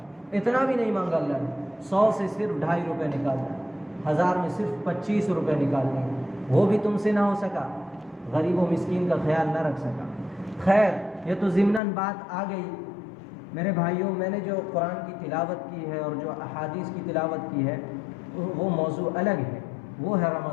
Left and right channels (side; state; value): right; drops out; at 11.8 s